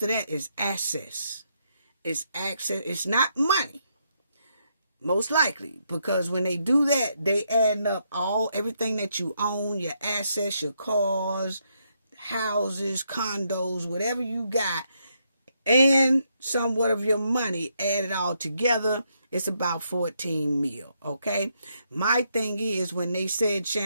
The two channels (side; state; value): both; inverted; correlation -0.77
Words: of that is access. It's access. It's not money. Most likely. Because when they do that, they add up everything that you own, your assets, your cars, houses, condos, whatever you got, and somewhat of your money, add it all together, it's about 14 mil. Okay? My thing is, when they said